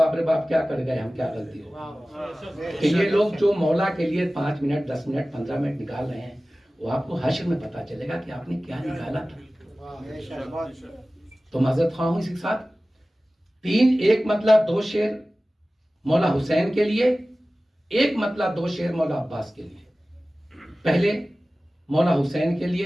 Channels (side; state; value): both; normal; correlation 0.97